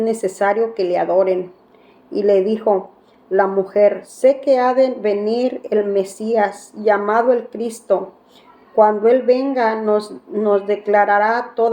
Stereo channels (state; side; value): identical; both; correlation 1.00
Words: que le adoren. Y le dijo la mujer, sé que ha de venir el Mesías, llamado el Cristo. Cuando Él venga nos declarará